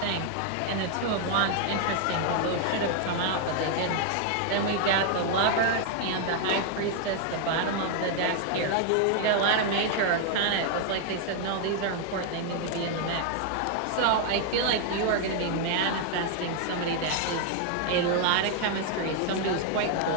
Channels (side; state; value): both; different; correlation 0.00